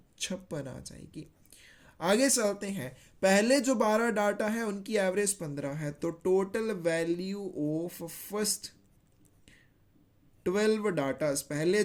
आ जाएगी। आगे चलते हैं, पहले जो 12 डाटा है उनकी एवरेज 15 है, तो total value of first 12 datas, पहले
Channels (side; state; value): both; identical; correlation 1.00